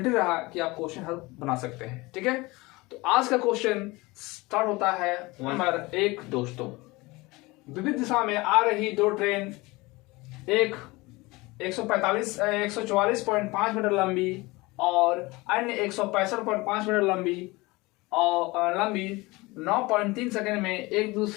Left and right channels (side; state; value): right; quieter; 22.7 dB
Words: रहा कि आप क्वेश्चन हल बना सकते हैं। ठीक है, तो आज का क्वेश्चन स्टार्ट होता है नंबर 1। दोस्तों, विविध दिशा में आ रही दो ट्रेन, एक 144.5 मीटर लंबी और अन्य 165.5 मीटर लंबी 9.3 सेकंड में एक